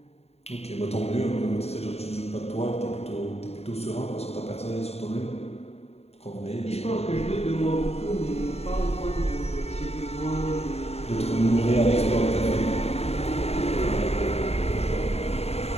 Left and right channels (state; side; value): late; right; 0.30 ms